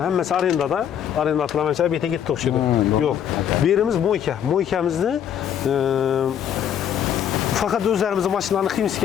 hemmesi arendada. Arenda atılamayınca bete gitti okşudu. Yok. Birimiz moyka. Moykamizni fakat özlerimizin maşınlarını kıyımsız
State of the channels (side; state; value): right; quieter; 9.4 dB